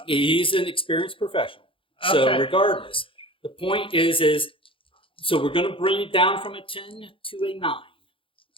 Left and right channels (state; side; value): late; right; 0.25 ms